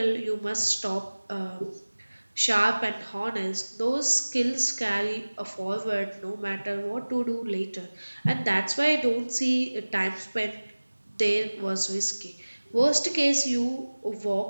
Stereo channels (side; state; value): both; inverted; correlation -1.00